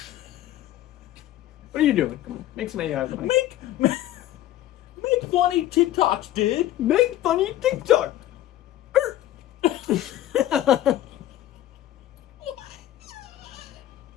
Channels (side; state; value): right; quieter; 13.6 dB